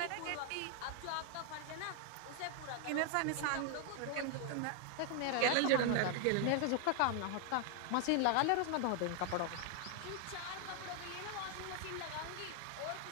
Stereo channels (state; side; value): different; both; correlation 0.00